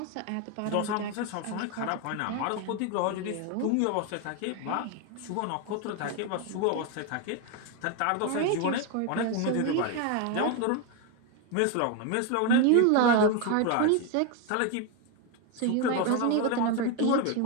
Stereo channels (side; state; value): both; different; correlation 0.02